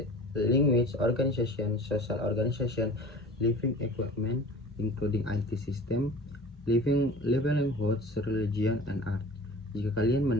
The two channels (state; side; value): normal; both; correlation 0.42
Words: language, organization, social organization, living equipment including IT system, livelihoods, religion, and art. Jika kalian